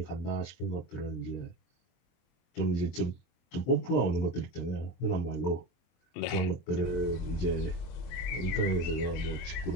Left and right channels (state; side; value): late; right; 23 ms